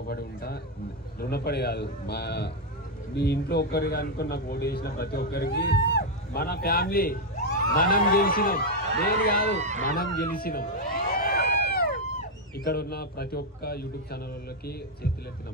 కాదు, మీ ఇంట్లో ఒక్కరికి అనుకుని నాకు ఓటు వేసిన ప్రతి ఒక్కరికి మన ఫ్యామిలీ మనం గెలిచినాం, నేను కాదు మనం గెలిచినాం. ఇక్కడ ఉన్న ప్రతి ఒక్క యూట్యూబ్ ఛానల్ వాళ్ళకి చేతులెత్తి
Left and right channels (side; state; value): both; normal; correlation 0.02